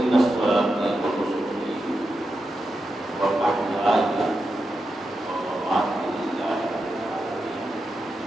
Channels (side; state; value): both; normal; correlation 0.88